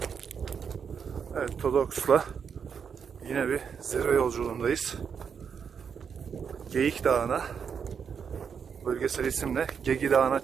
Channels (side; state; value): left; quieter; 6.8 dB